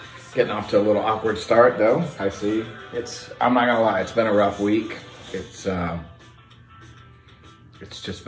Getting off to a little awkward start though, I see. I'm not gonna lie, it's been a rough week. It's just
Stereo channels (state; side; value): identical; both; correlation 1.00